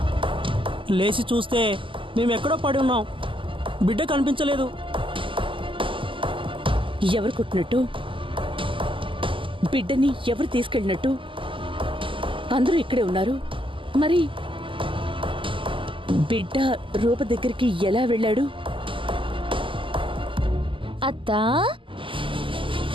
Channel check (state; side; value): late; left; 0.25 ms